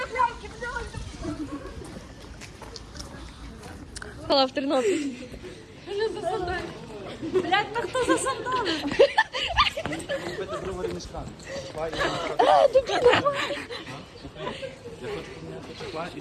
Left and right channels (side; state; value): both; identical; correlation 1.00